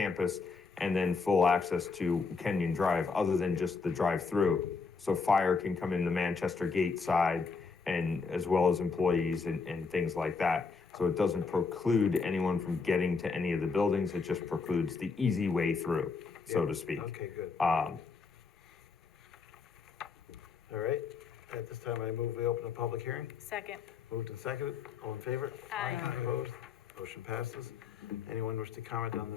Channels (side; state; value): right; quieter; 4.9 dB